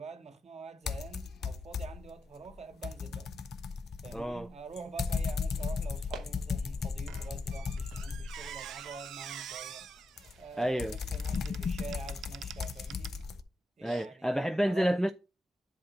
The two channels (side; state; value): both; normal; correlation 0.86